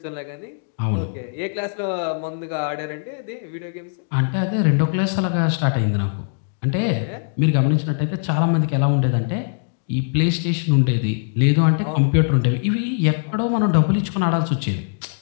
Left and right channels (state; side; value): silent; right; digital silence